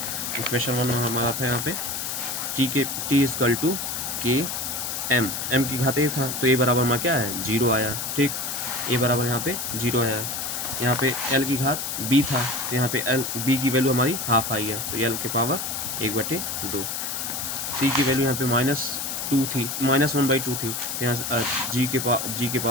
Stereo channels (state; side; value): noise; left; hiss, 3 dB below the sound